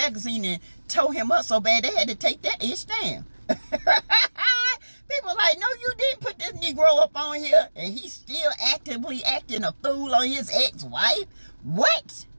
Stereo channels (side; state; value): both; inverted; correlation -1.00